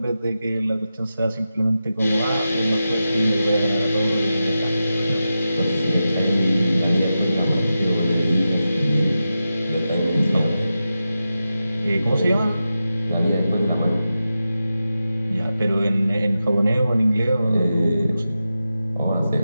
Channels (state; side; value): inverted; both; correlation -0.91